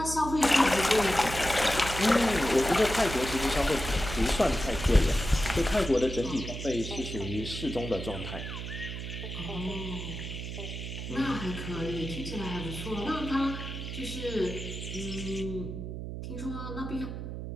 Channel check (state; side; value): noise; right; hum, 7 dB below the sound